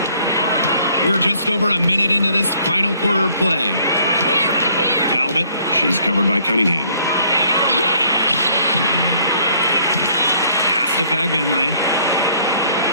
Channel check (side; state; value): both; inverted; correlation -0.61